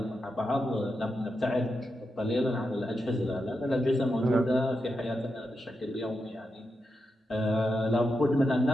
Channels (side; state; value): both; normal; correlation 0.87